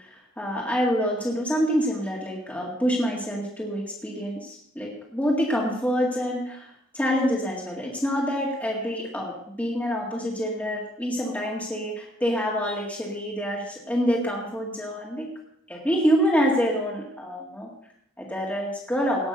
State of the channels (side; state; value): both; normal; correlation 0.68